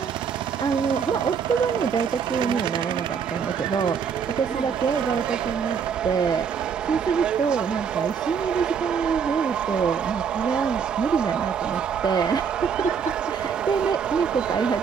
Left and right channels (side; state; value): left; quieter; 6.7 dB